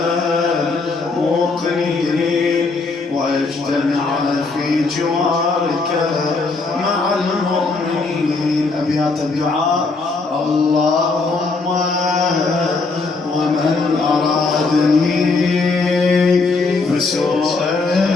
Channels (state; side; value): quieter; right; 3.9 dB